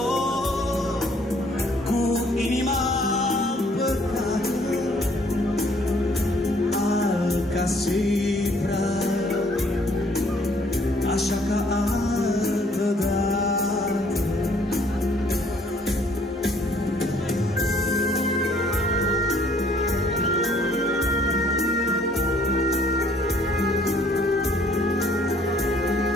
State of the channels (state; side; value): normal; both; correlation 0.62